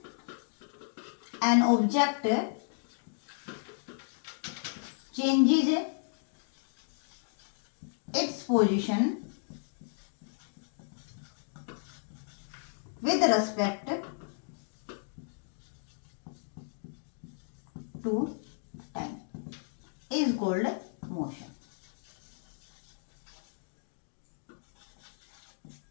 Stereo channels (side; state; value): right; silent; digital silence